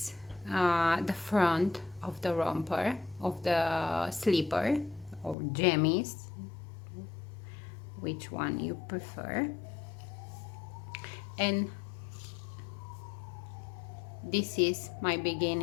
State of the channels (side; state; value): right; drops out; at 5.4 s